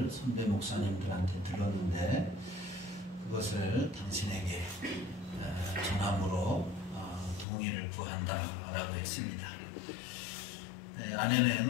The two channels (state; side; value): drops out; right; at 7.5 s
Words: 선배 목사님들한테 들었는데 그것을 당신에게 전함으로 동의를 구한다라고 했습니다. 아내는